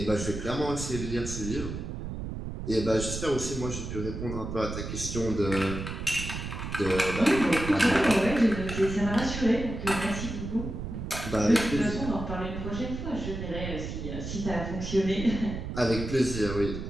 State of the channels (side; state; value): right; noise; rumble, 6 dB below the sound